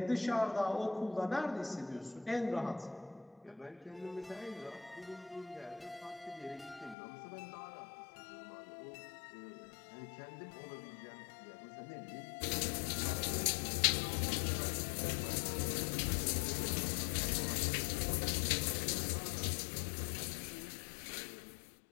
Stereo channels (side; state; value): right; drops out; at 7.0 s